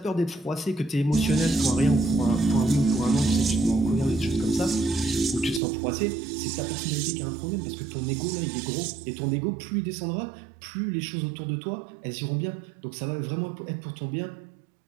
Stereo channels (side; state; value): left; drops out; at 5.6 s